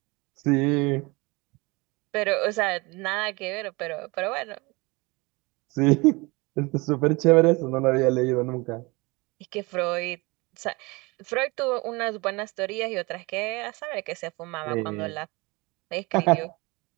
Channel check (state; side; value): quieter; left; 25.4 dB